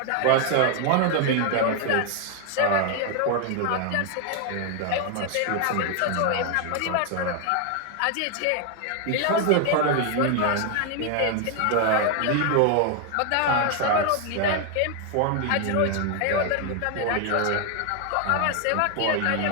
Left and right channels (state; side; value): different; both; correlation 0.00